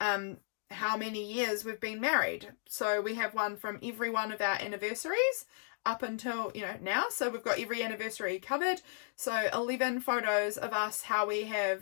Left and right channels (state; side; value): silent; right; digital silence